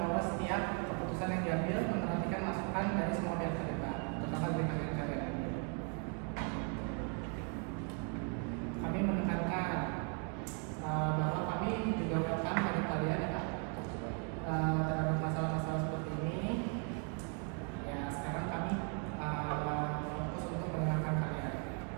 setiap keputusan yang diambil memperhatikan masukan dari semua pihak terlibat, terutama dari kalian. Kami menekankan bahwa kami juga welcome pada kalian ya Pak, terhadap masalah-masalah seperti ini. Ya sekarang kami fokus untuk mendengarkan kalian.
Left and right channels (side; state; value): left; quieter; 37.4 dB